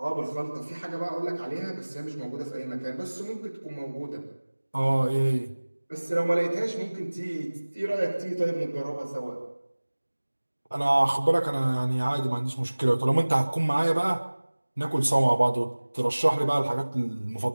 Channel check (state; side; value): inverted; both; correlation -1.00